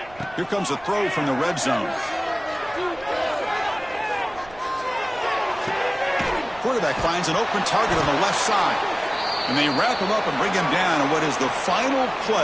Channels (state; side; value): noise; right; rumble, 22 dB below the sound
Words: Here comes a throw from the red zone. Quarterback finds an open target on the left side. And they wrap him up and bring him down on what is the final